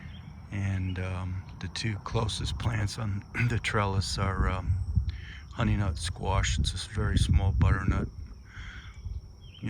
and the 2 closest plants on the trellis are honey nut squash. It's a very small butternut,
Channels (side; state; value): both; identical; correlation 1.00